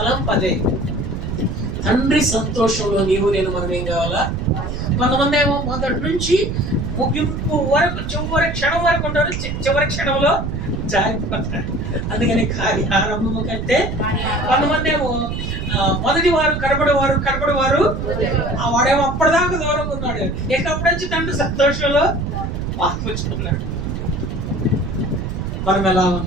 అదే. తండ్రి సంతోషంలో నీవు నేను మనం ఏం కావాలా? కొంతమంది ఏమో మొదటి నుంచి ముగింపు వరకు చివరి క్షణం వరకు ఉంటారు, చివరి క్షణంలో జారిపోతారు. అందుకని కార్యారంభము కంటే కొంతమంది ఏమో మొదటి వారు కనబడేవారు వాడేమో అప్పటిదాకా దూరంగా ఉన్నాడు, ఎక్కడి నుంచి తండ్రి సంతోషంలో పాల్పంచుకున్నాడు. మనం ఎలా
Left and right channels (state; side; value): noise; right; rumble, 4 dB below the sound